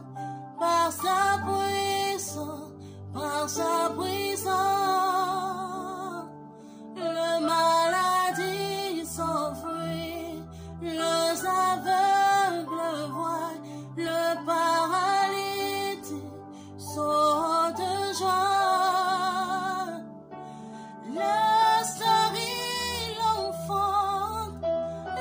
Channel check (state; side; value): identical; both; correlation 1.00